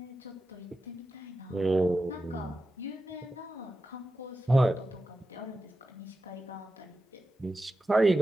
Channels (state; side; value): normal; both; correlation 0.92